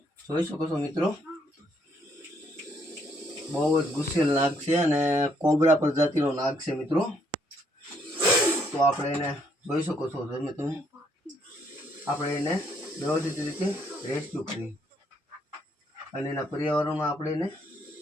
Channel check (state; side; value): normal; both; correlation 0.70